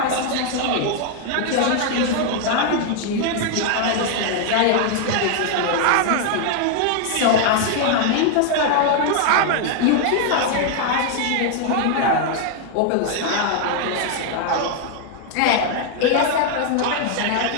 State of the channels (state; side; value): different; both; correlation 0.00